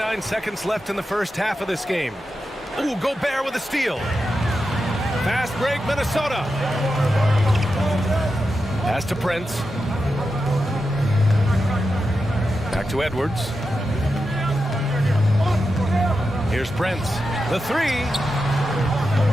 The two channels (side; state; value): both; normal; correlation 0.89